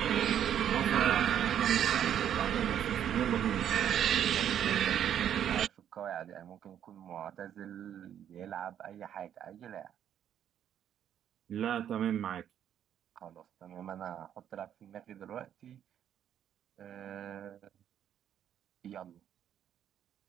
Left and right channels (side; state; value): left; quieter; 9.9 dB